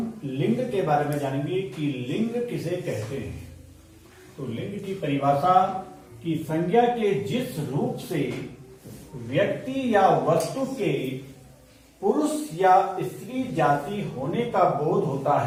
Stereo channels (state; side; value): identical; both; correlation 1.00